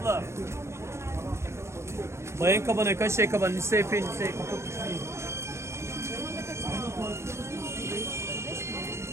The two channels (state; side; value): late; left; 0.13 ms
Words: Bayan kabana kaç şey kaban lise epey lise kapı düşmeyin.